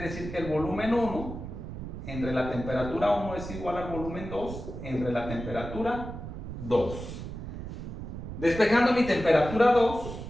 que el volumen 1 entre la temperatura 1 es igual al volumen 2 entre la temperatura 2. Despejando mi temperatura 2,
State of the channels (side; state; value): right; noise; rumble, 8 dB below the sound